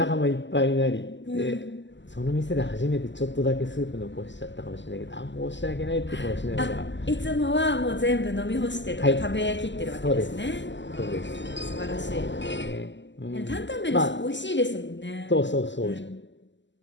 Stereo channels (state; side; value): late; right; 0.53 ms